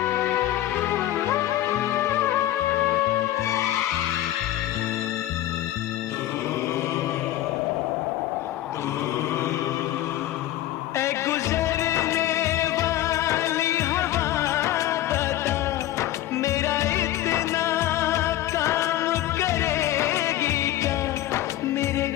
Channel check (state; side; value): quieter; right; 13.8 dB